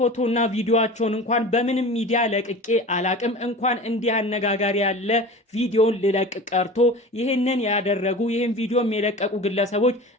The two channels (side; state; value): both; normal; correlation 0.36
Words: ቪዲዮቸውን እንኳን በምንም ሚዲያ ለቅቄ አላቅም። እንኳን እንዲህ አነጋጋሪ ያለ ቪዲዮን ልለቅ ቀርቶ ይህንን ያደረጉ ይህን ቪዲዮ የለቀቁ ግለሰቦች